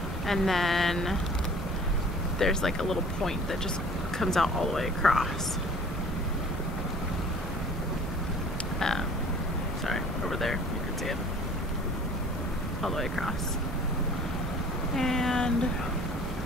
And then there's like a little point that just comes out all the way across. Sorry, over there, you can see it. All the way across. And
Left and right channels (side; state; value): both; normal; correlation 0.49